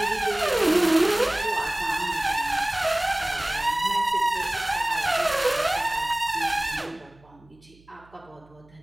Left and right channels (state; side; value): noise; right; hum, 29 dB below the sound